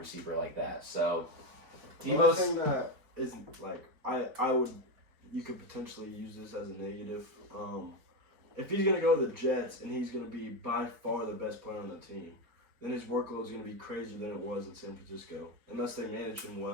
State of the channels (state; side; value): late; left; 4.4 ms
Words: like that. So, Deebo, thing that is you could potentially use this as a negative. If he's gonna go to the Jets and he's gonna be by far the best player on the team, then his workload is gonna be crazier than it was in San Francisco, unless they manage him